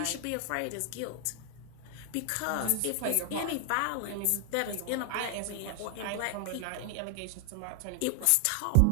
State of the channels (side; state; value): both; different; correlation 0.00